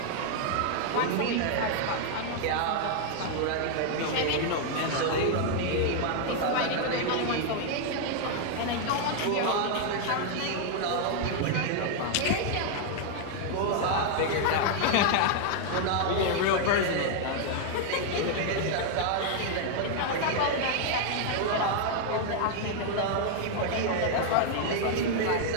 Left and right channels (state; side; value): different; both; correlation 0.00